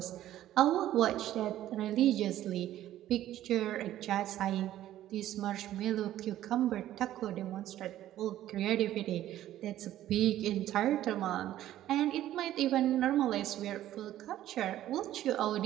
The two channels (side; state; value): left; quieter; 13.1 dB